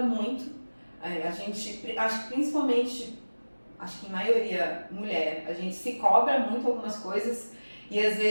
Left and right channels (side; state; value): both; inverted; correlation -1.00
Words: muito. A gente, acho que principalmente, acho que em maioria mulher, a gente se cobra muito algumas coisas e às